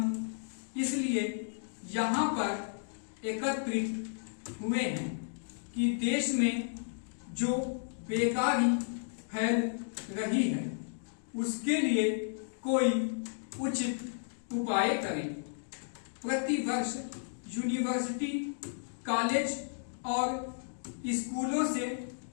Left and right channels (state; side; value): silent; right; digital silence